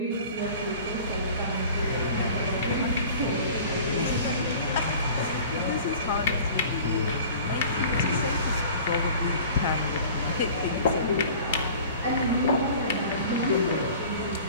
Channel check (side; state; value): both; inverted; correlation -0.44